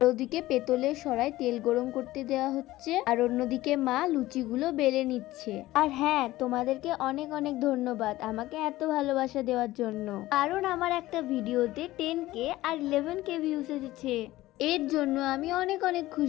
ওদিকে পেতলের সরায় তেল গরম করতে দেওয়া হচ্ছে, আর অন্যদিকে মা লুচিগুলো বেলে নিচ্ছে। আর হ্যাঁ, তোমাদেরকে অনেক অনেক ধন্যবাদ আমাকে এত ভালোবাসা দেওয়ার জন্য, কারণ আমার একটা ভিডিওতে 10K আর 11K ভিউজ এসেছে। এর জন্য আমি অনেক অনেক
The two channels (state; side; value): quieter; right; 16.9 dB